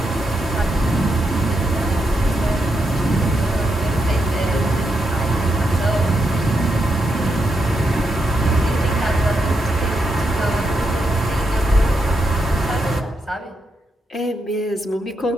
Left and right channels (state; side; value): normal; both; correlation 0.82